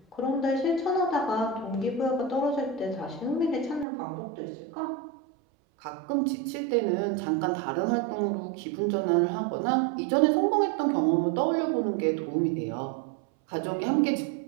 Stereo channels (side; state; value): left; drops out; at 3.9 s